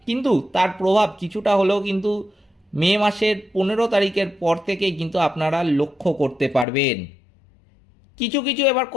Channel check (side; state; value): right; drops out; at 6.7 s